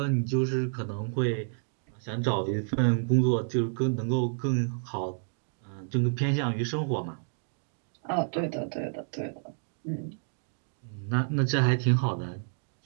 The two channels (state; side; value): silent; left; digital silence